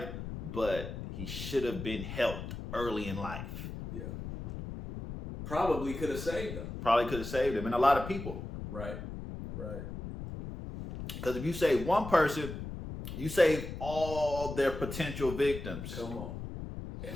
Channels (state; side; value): noise; left; rumble, 8 dB below the sound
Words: but he should have been helped early in life. Yeah. Probably could have saved them. Probably could have saved him, and a lot of people. Right. Right. Because if you save one person, you save all their potential victims. Come on. And